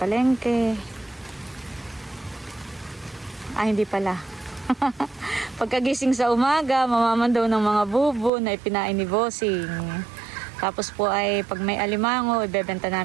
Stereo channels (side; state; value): left; drops out; at 8.3 s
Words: Hindi pala. Pagkagising sa umaga, mamamandaw ng mga bubo na ipinain ni Bossing. Tapos po ay pag may alimango, ibebenta